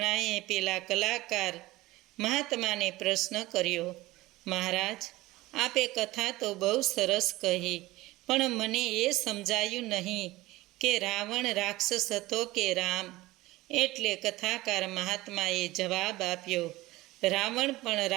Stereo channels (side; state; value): left; quieter; 18.8 dB